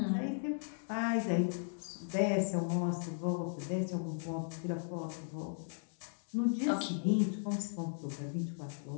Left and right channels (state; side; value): silent; right; digital silence